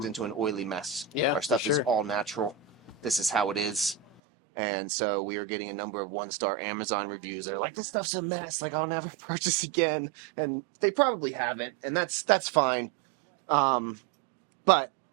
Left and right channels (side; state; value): left; drops out; at 4.2 s